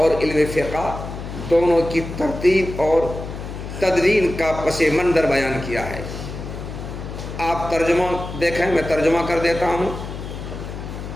علم فقہ دونوں کی ترتیب اور تدوین کا پس منظر بیان کیا ہے۔ آپ ترجمہ دیکھیں، میں ترجمہ کر دیتا ہوں۔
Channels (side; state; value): left; noise; hum, 9 dB below the sound